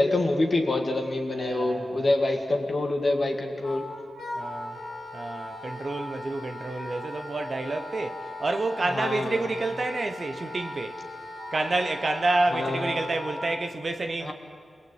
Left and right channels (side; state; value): both; normal; correlation 0.92